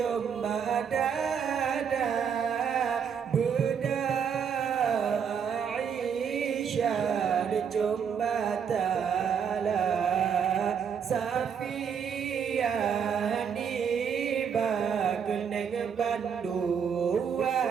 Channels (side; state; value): left; quieter; 7.2 dB